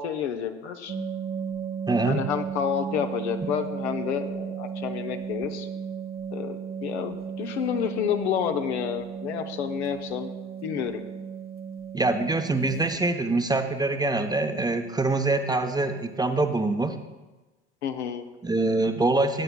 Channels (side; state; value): both; normal; correlation 0.51